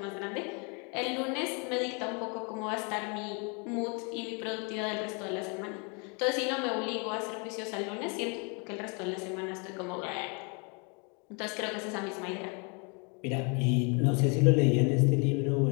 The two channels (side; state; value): right; quieter; 34.1 dB